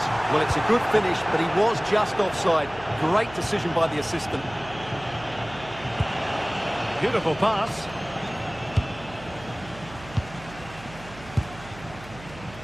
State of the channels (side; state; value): right; noise; hum, 17 dB below the sound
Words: Well, it's a good finish, but he was just offside. Great decision by the assistant. Beautiful pass.